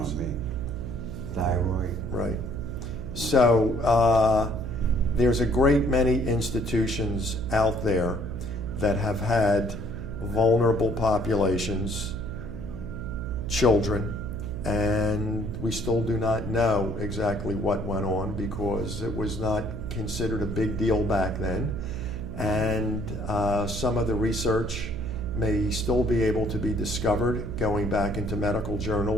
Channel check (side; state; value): right; noise; hum, 6 dB below the sound